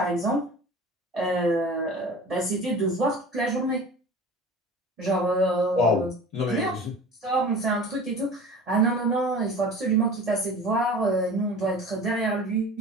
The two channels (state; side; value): normal; both; correlation 0.39